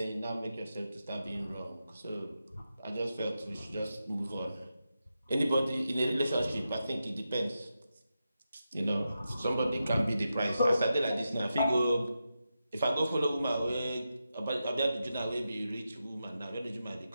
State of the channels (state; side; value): inverted; both; correlation -0.89